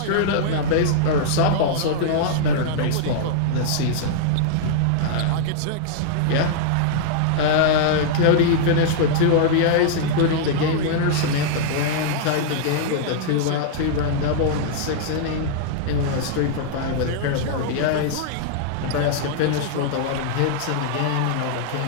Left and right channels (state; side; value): different; both; correlation -0.01